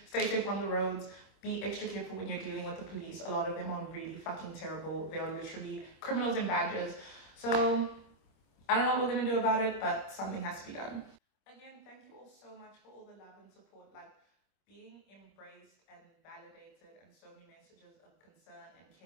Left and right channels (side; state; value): right; late; 26 ms